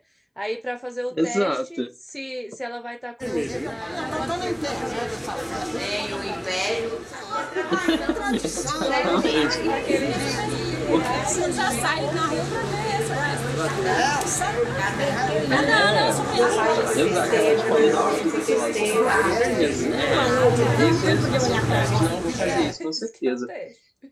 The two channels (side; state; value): both; identical; correlation 1.00